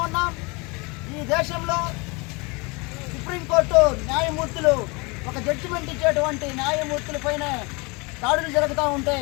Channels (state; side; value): quieter; right; 27.9 dB